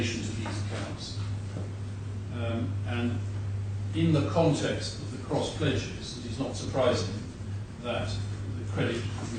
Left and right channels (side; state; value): both; identical; correlation 1.00